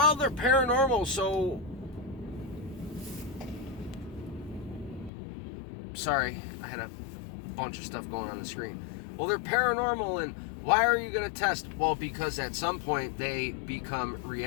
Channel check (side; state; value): right; drops out; at 5.1 s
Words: they're paranormal, so... Sorry, I had a bunch of stuff going on the screen. Well, they're paranormal, and why are you going to test? Well, because at some point they become